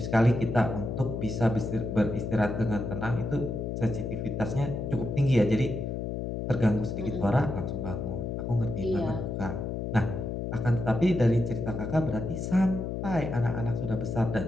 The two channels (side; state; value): left; noise; hum, 3 dB below the sound